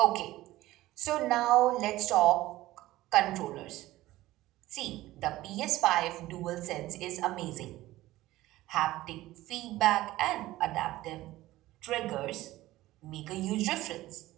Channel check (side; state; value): left; quieter; 16.7 dB